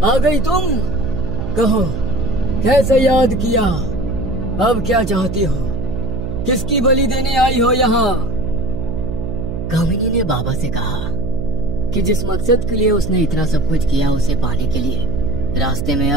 आ गई तुम? कहो, कैसे याद किया? अब क्या चाहती हो? किसकी बलि देने आई हो यहाँ? कामिनी ने बाबा से कहा कि जिस मकसद के लिए उसने इतना सब कुछ किया उसे पाने के लिए रास्ते में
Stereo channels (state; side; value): noise; right; hum, 4 dB below the sound